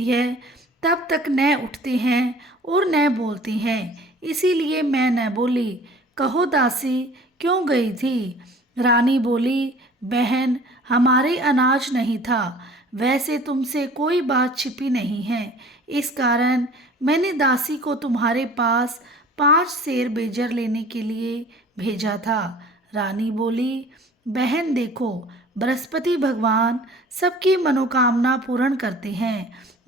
है तब तक न उठते हैं और न बोलती हैं, इसीलिए मैं न बोली। कहो दासी, क्यों गई थी? रानी बोली, बहन, हमारे अनाज नहीं था। वैसे तुमसे कोई बात छिपी नहीं है, इस कारण मैंने दासी को तुम्हारे पास 5 सेर बेजर लेने के लिए भेजा था। रानी बोली, बहन देखो, बृहस्पति भगवान सबकी मनोकामना पूर्ण करते हैं।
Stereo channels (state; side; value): normal; both; correlation 0.48